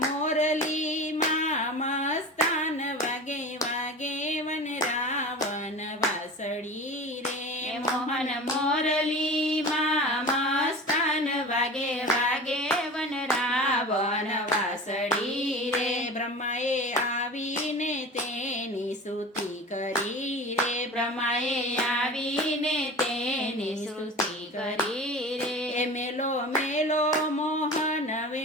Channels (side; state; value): both; normal; correlation 0.35